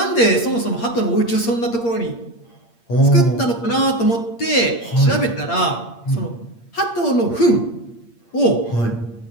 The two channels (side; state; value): right; late; 8.6 ms